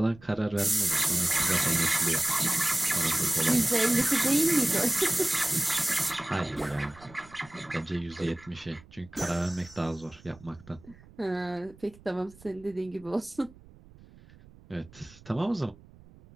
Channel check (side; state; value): right; noise; rumble, 23 dB below the sound